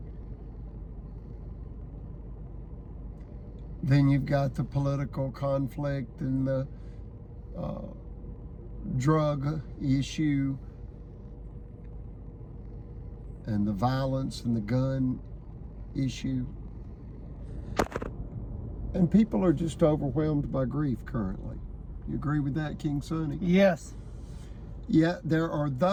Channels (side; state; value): both; identical; correlation 1.00